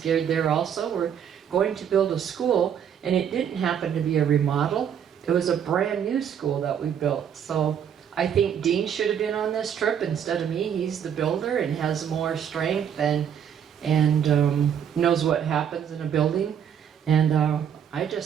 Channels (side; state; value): left; quieter; 8.5 dB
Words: there also. We're going to build a school, and it didn't happen to be a remodel. It was a brand new school that we built. So I think Dean should have been on this trip instead of me. He's the builder and has more strength and knows what happens in a building. And I